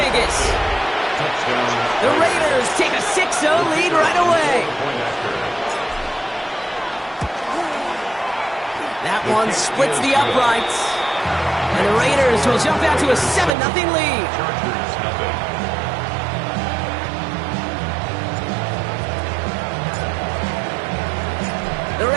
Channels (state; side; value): drops out; left; at 13.6 s